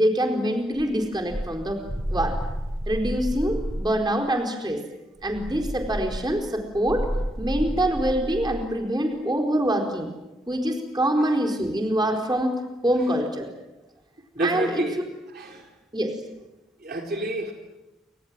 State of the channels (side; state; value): both; normal; correlation 0.78